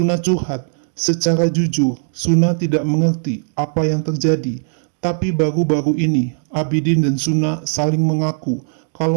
curhat. Secara jujur, Suna tidak mengerti apa yang terjadi. Tapi baru-baru ini, Abidin dan Suna saling mengaku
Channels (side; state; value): left; silent; digital silence